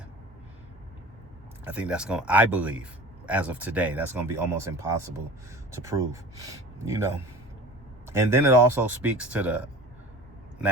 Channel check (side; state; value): both; normal; correlation 0.38